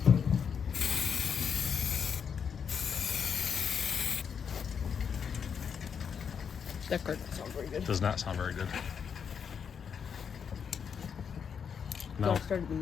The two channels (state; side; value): quieter; right; 7.0 dB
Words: That card doesn't sound very good. Does not sound very good. Do No. I start in